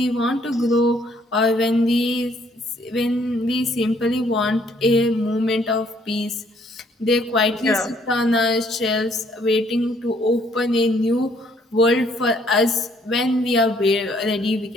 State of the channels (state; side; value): normal; both; correlation 0.65